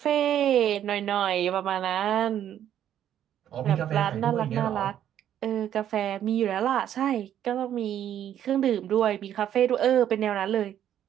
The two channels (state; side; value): quieter; left; 10.6 dB